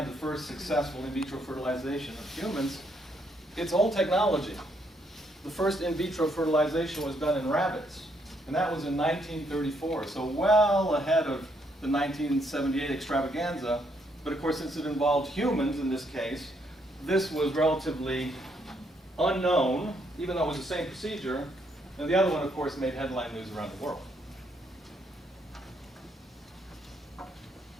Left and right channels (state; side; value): normal; both; correlation 0.73